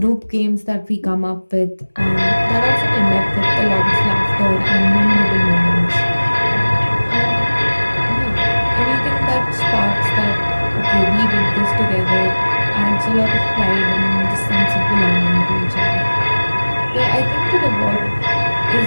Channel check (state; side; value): inverted; both; correlation -1.00